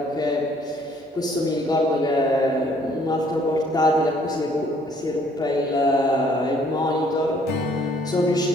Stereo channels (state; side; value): normal; both; correlation 0.62